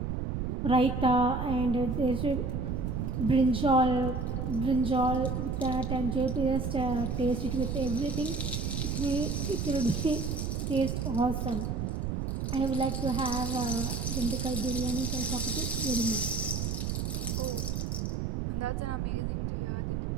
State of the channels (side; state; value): right; noise; rumble, 1 dB below the sound